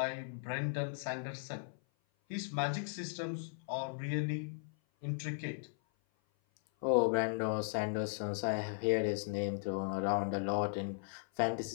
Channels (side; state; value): right; silent; 53 dB below the other